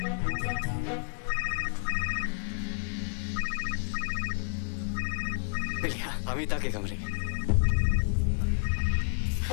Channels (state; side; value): silent; right; 58 dB below the other